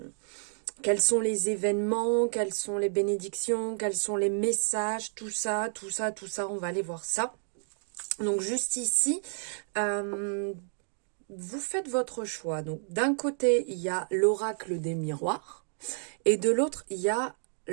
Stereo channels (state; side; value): silent; left; digital silence